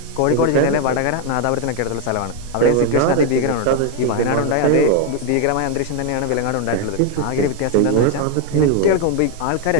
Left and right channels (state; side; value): different; both; correlation 0.01